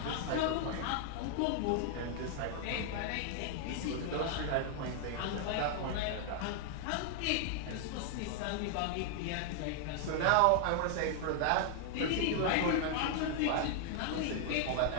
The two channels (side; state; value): both; different; correlation 0.00